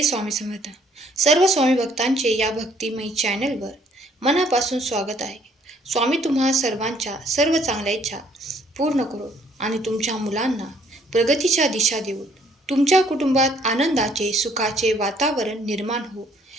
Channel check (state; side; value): normal; both; correlation 0.63